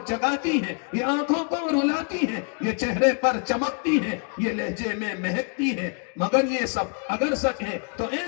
جگاتی ہے، یہ آنکھوں کو رلاتی ہے، یہ چہرے پر چمکتی ہے، یہ لہجے میں مہکتی ہے۔ مگر یہ سب اگر سچ ہے تو اے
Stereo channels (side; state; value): right; quieter; 38.6 dB